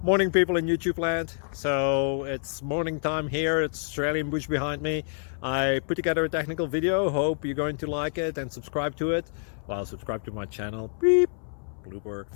Morning, people in YouTube land. So it's morning time here. It's Australian bush behind me. I put together a technical video. Hope you're going to like it and subscribe to it. Well, subscribe to my channel. Beep. Blooper.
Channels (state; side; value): silent; right; 60 dB below the other